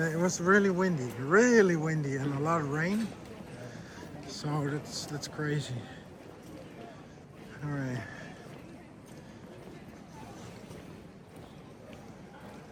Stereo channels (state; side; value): identical; both; correlation 1.00